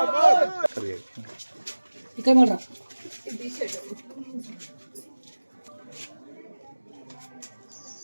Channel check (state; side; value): inverted; both; correlation -1.00